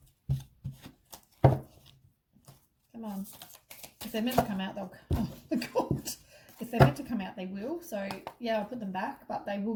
Come on. If they're meant to come out, they'll... Oh my god. If they're meant to come out, they will. So, yeah, I'll put them back, but they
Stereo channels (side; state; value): both; identical; correlation 1.00